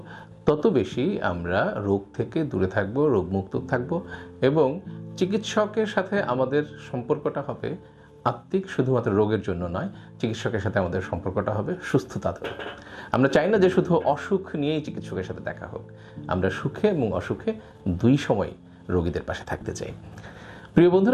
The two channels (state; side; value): identical; both; correlation 1.00